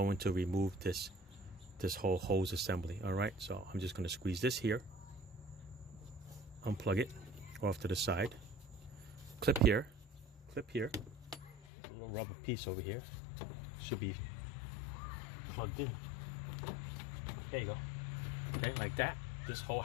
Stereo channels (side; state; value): right; drops out; at 11.7 s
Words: to remove this whole hose assembly. All right, so I'm just going to squeeze this here, unplug it off to the side, clip here, a little rubber piece over here, should be plugged in. There you go. Okay, like that. This whole